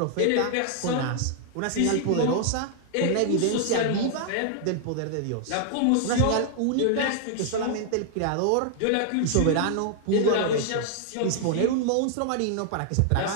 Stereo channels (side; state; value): both; different; correlation 0.00